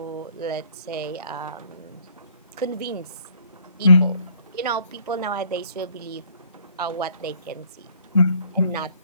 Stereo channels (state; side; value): inverted; both; correlation -0.61